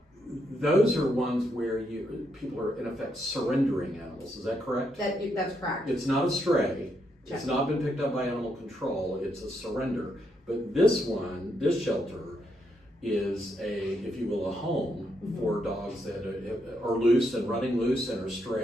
Those are ones where people are in effect surrendering animals. Is that correct? That's correct. It's not a stray. Check. It's not been picked up by animal control. It's a surrender. But this shelter, is if you will, a home for dogs that are loose and running loose and are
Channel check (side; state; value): both; normal; correlation 0.78